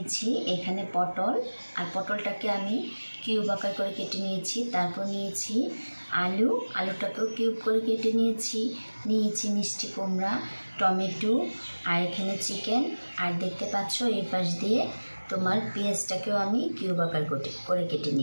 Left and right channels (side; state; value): both; inverted; correlation -1.00